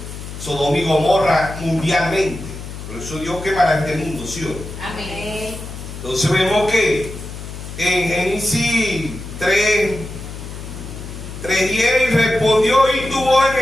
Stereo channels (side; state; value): left; noise; hum, 10 dB below the sound